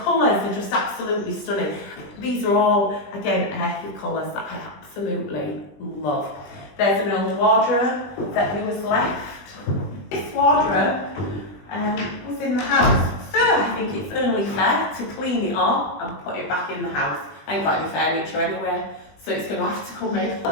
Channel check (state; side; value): late; right; 20 ms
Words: are just absolutely stunning. These are all, again, earthy colours that I absolutely love. There's an old wardrobe that was left. This wardrobe was in the house. So I think it's only fair to clean it up and put it back in the house. I ain't got any furniture anyway, so it's going to have to come in.